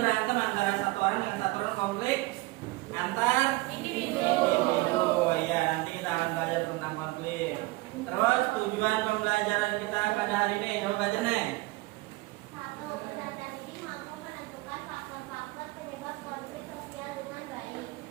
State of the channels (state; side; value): quieter; left; 21.4 dB